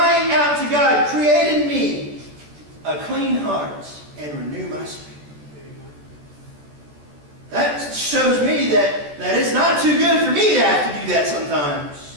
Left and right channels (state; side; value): late; left; 14 ms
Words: out to God, create in me a clean heart and renew my spirit. That shows me that it's not too good for me to have to do that